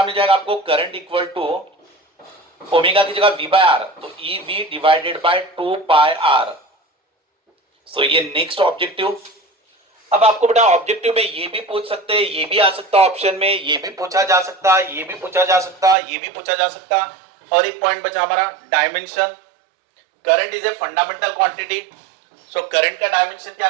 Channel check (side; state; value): left; drops out; at 16.0 s